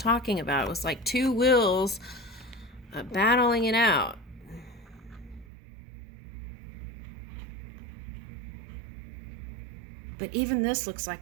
about. It was like two wills battling it out. But even this looks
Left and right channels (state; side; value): drops out; left; at 5.5 s